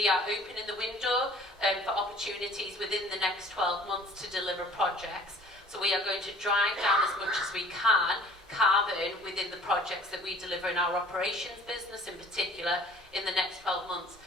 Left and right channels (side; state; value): both; normal; correlation 0.51